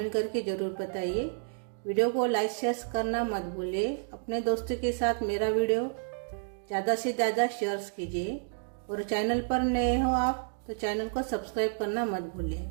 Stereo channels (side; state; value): left; silent; digital silence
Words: करके ज़रूर बताइए। वीडियो को लाइक शेयर करना मत भूलिए। अपने दोस्तों के साथ मेरा वीडियो ज़्यादा से ज़्यादा शेयर कीजिए। और चैनल पर नए हो आप तो चैनल को सब्सक्राइब करना मत भूलिए।